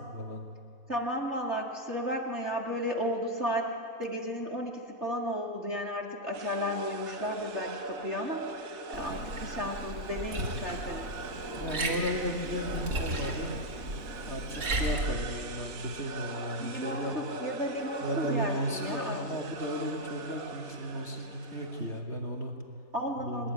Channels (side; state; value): left; late; 3.6 ms